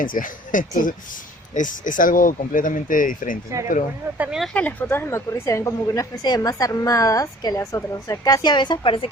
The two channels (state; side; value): normal; both; correlation 0.52